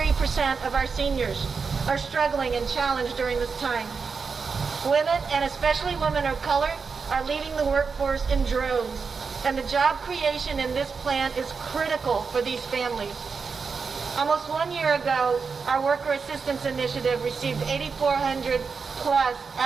of our seniors are struggling and challenged during this time. Women, and especially women of color, are leaving the workforce in droves, and the job creation in this plan is critical for these families. Almost 1 year ago, our Worker Assistance Initiative received 8,400 plus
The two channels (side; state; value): left; quieter; 5.2 dB